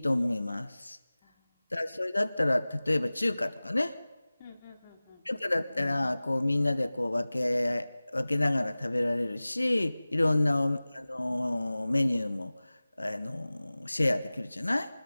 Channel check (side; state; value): both; inverted; correlation -0.99